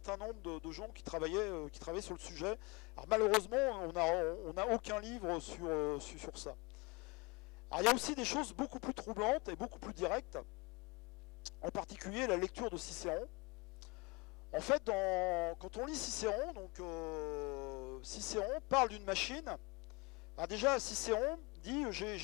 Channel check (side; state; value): right; quieter; 27.2 dB